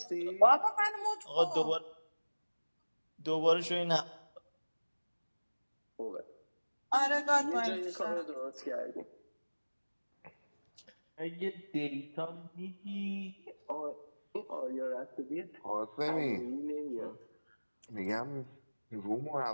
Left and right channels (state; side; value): inverted; both; correlation -1.00